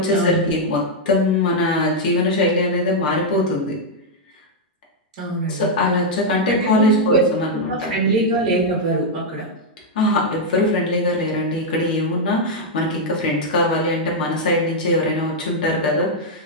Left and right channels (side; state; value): both; normal; correlation -0.03